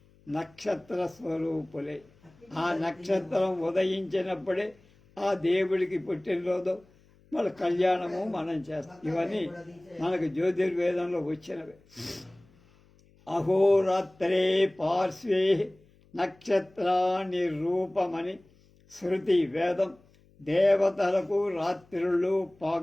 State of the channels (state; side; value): noise; left; hum, 30 dB below the sound